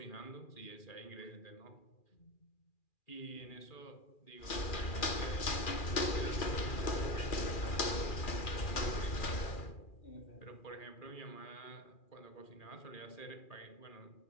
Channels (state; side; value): late; right; 2.4 ms